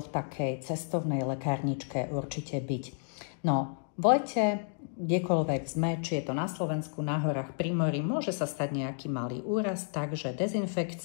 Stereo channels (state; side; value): silent; right; digital silence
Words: v takej cestovnej lekárničke určite byť? No, v lete, kdekoľvek sme, či je to na Slovensku, na horách, pri mori, môže sa stať nejaký malý úraz, takže